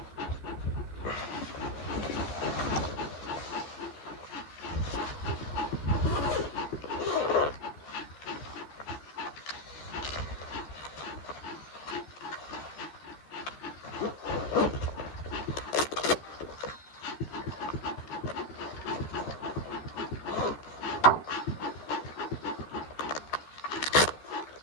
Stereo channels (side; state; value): right; late; 13 ms